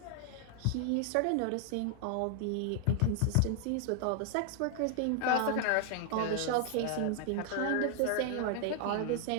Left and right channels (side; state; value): both; different; correlation 0.00